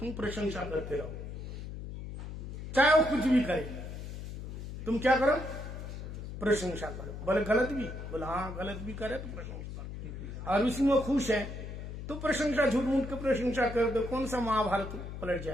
प्रशंसा करते रहो, चाहे वो कुछ भी करे, तुम क्या करो? प्रशंसा करो। बोले गलत भी? बोले हाँ गलत भी करे तो प्रशंसा करो। और उसमें वो खुश है तो प्रशंसा, झूठ मूठ के प्रशंसा कर दो, कौन सा महाभारत पलट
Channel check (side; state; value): left; noise; hum, 8 dB below the sound